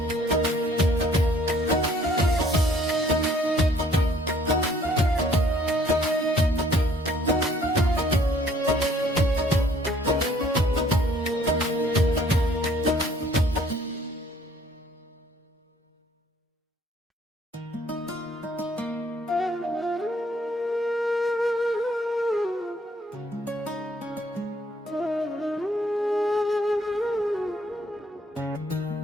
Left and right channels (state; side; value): normal; both; correlation 0.60